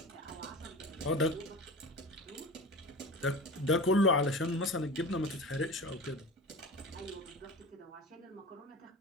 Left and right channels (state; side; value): normal; both; correlation 0.32